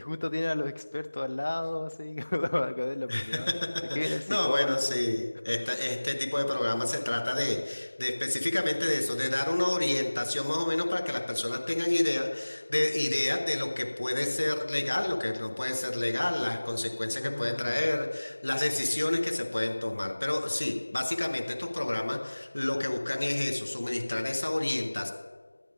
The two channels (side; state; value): both; inverted; correlation -1.00